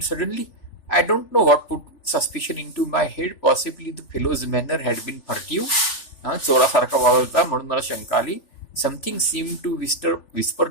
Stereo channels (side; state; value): right; late; 3.4 ms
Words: suddenly, I don't know what put suspicion into my head. Possibly the fellow's manner had been furtive. चोरासारखा वावरता म्हणून मला शंका आली. Something seemed to whisper